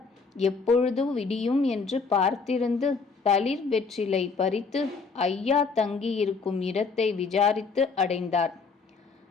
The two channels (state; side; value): quieter; right; 4.8 dB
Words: எப்பொழுது விடியும் என்று பார்த்திருந்து தளிர் வெற்றிலை பறித்து ஐயா தங்கியிருக்கும் இடத்தை விசாரித்து அடைந்தார்.